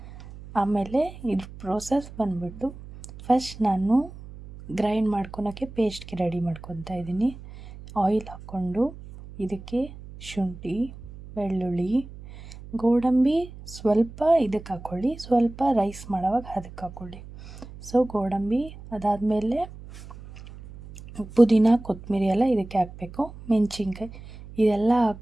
ಆಮೇಲೆ ಇದ್ರ ಪ್ರೋಸೆಸ್ ಬಂದ್ಬಿಟ್ಟು ಫಸ್ಟ್ ನಾನು ಗ್ರೈಂಡ್ ಮಾಡ್ಕೊಳಕ್ಕೆ ಪೇಸ್ಟ್ಗೆ ರೆಡಿ ಮಾಡ್ಕೊತಾ ಇದ್ದೀನಿ. ಆಯಿಲ್ ಹಾಕ್ಕೊಂಡು ಇದಕ್ಕೆ ಶುಂಠಿ, ಬೆಳ್ಳುಳ್ಳಿ, ಗೋಡಂಬಿ ಸ್ವಲ್ಪ ಇದಕ್ಕೆ ಹಾಕ್ಕೊಳ್ಳಿ, ಸ್ವಲ್ಪ ರೈಸ್ ಮಾಡೋವಾಗ ಅದಕ್ಕೆ ಹಾಕ್ಕೊಳ್ಳಿ. ಗೋಡಂಬಿ ಅದಾದಮೇಲೆ ಪುದೀನ, ಕೊತ್ತಂಬರಿ ಎಲ್ಲ ಇದಕ್ಕೆ ಹಾಕಬೇಕು. ಮೆಣಸಿನ್ಕಾಯಿ ಇದೆಲ್ಲ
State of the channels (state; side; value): noise; right; hum, 16 dB below the sound